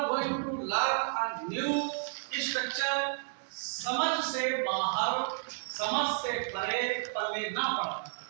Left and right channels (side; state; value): left; silent; digital silence